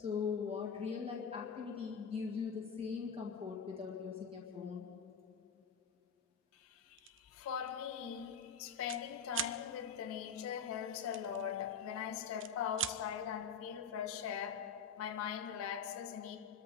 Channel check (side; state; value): right; quieter; 5.2 dB